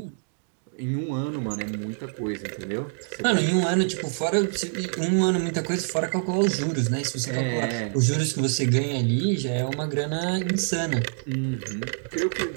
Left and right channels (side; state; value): left; silent; digital silence